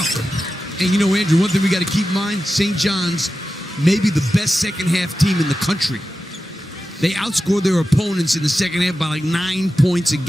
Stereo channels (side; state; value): both; normal; correlation 0.92